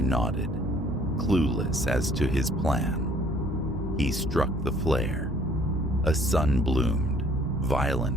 nodded, clueless as to his plan. He struck the flare. A sun bloomed,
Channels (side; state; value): both; normal; correlation 0.59